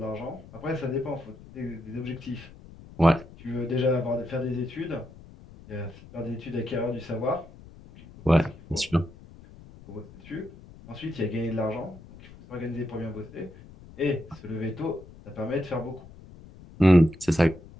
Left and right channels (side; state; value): left; noise; rumble, 19 dB below the sound